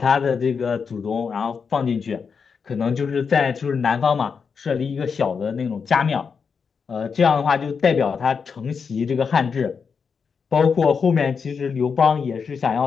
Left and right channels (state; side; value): quieter; right; 5.9 dB